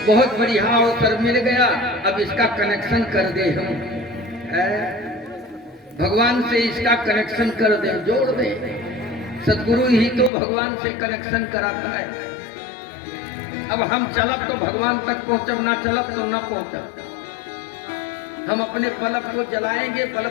बहुत बढ़िया अवसर मिल गया, अब इसका कनेक्शन कर दे हम, भगवान से इसका कनेक्शन कर दे, जोड़ दे। सदगुरु ही तो भगवान से कनेक्शन कराता है। अब हम चलब तो भगवान तक पहुंचब, ना चलब तो ना पहुंचब। हम अपने बल्ब को जलाएंगे,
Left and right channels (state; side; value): drops out; right; at 10.3 s